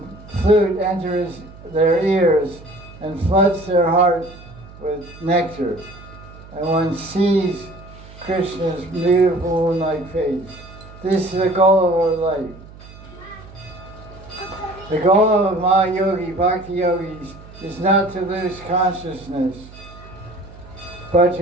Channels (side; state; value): right; noise; hum, 19 dB below the sound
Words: flute enter their ears and floods their heart with nectar, and one sees Krishna's beautiful moon-like face. This is the goal of our life. The goal of Mahayogi, Bhakti Yogis, is not to lose consciousness, but